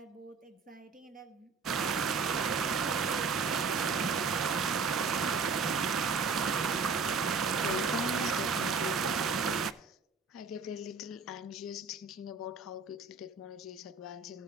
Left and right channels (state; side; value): quieter; left; 4.8 dB